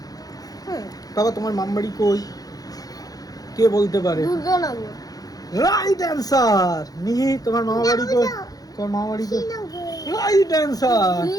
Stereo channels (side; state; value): right; late; 0.18 ms